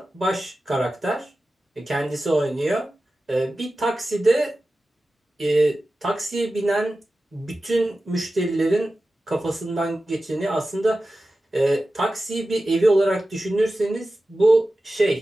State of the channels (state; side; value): normal; both; correlation 0.94